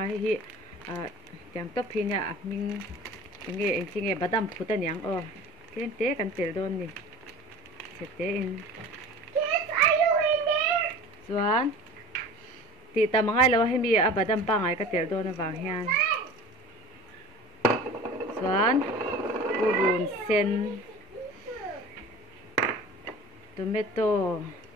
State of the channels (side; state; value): both; normal; correlation 0.39